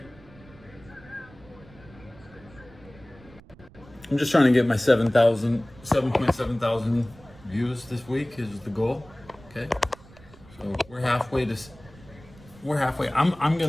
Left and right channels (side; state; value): right; noise; rumble, 23 dB below the sound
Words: I'm just trying to get my 7.7 thousand views this week is the goal. Okay. So we're halfway. I'm